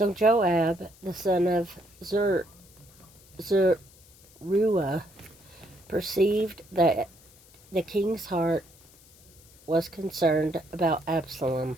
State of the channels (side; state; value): left; noise; hiss, 26 dB below the sound